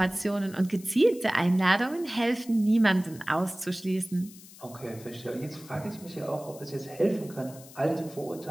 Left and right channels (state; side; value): noise; left; hiss, 19 dB below the sound